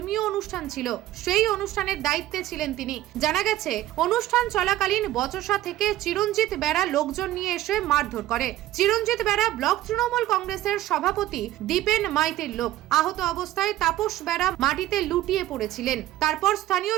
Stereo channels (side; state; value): left; quieter; 14.6 dB